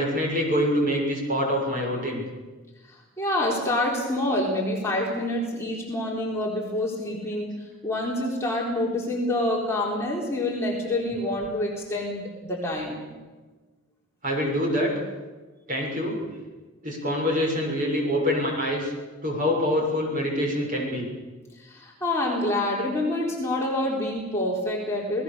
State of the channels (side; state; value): both; normal; correlation 0.33